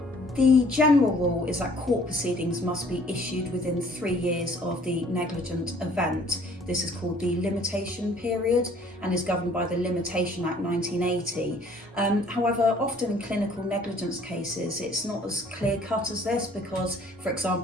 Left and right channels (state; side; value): normal; both; correlation 0.56